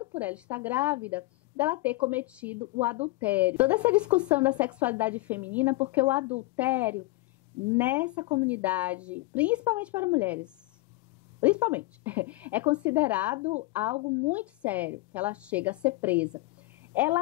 por ela estar grávida, dela ter cometido o adultério. Toda essa discussão da sexualidade feminina, porque o adultério nessa comunidade, principalmente para mulheres, é considerado algo muito sério, que ela chega a ser presa.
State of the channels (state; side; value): quieter; right; 20.4 dB